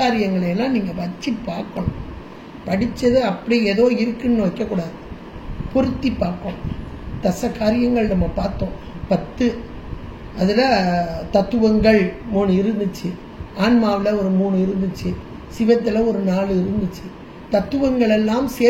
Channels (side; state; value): both; identical; correlation 1.00